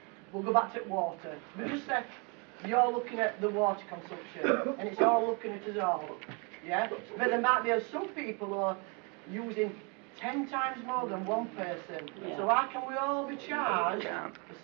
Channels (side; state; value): left; quieter; 32.5 dB